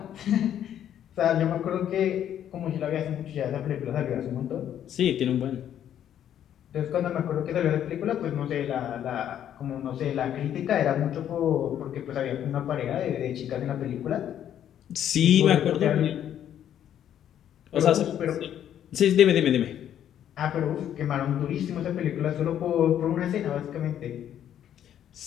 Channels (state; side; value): quieter; right; 10.3 dB